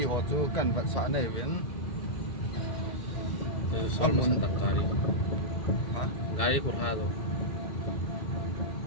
ho chu kan va sa nei win sol mun tak gari ha gari kur ha do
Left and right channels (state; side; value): late; right; 2.3 ms